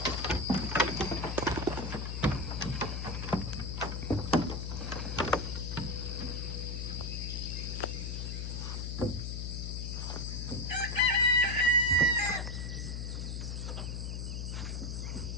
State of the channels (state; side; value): noise; left; hum, 4 dB below the sound